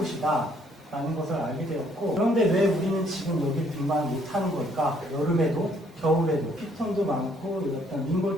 라는 것을 알게 되었고, 그런데 왜 우리는 지금 여기 등반을 못하는 걸까? 여름에도 겨울에도 피톤도 많고 어떤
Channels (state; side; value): normal; both; correlation 0.65